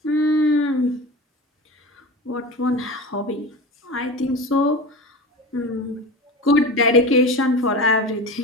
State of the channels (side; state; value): both; normal; correlation 0.30